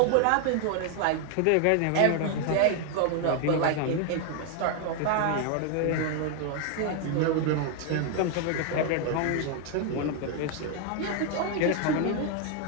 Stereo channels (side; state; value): both; different; correlation 0.00